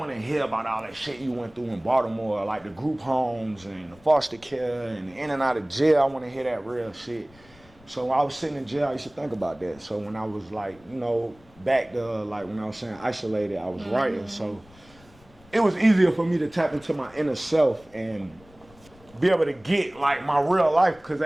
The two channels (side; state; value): left; noise; rumble, 26 dB below the sound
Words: to hear about all that shit you went through in Baltimore, like the group homes and the foster care and the in and out of jail. I want to hear that real shit. So when I was sitting in jail, I used to think about that. So when I was like, you know, back to like when I was saying isolated, I was writing. So it was easier for me to tap into my inner self and be able to get like my real life, because